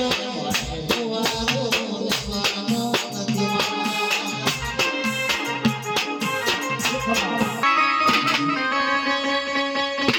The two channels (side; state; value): both; identical; correlation 1.00